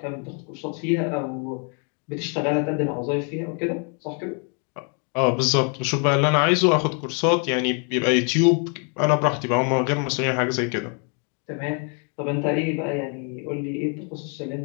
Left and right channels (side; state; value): right; quieter; 39.3 dB